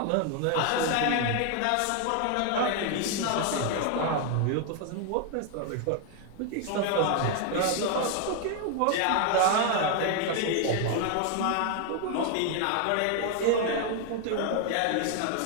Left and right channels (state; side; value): different; both; correlation 0.00